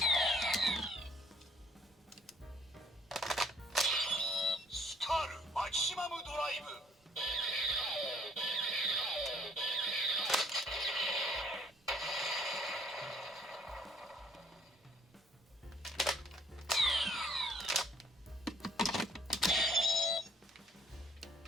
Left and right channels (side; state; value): both; normal; correlation 0.61